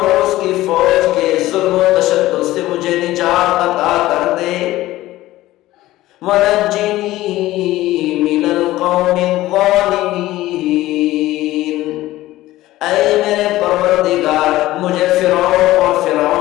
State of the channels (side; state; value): right; quieter; 16.3 dB